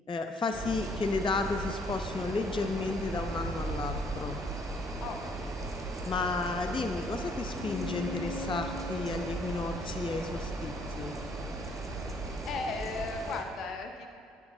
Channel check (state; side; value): normal; both; correlation 0.65